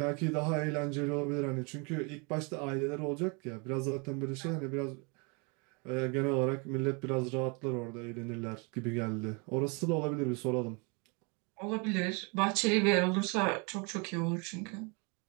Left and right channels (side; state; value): left; quieter; 32.1 dB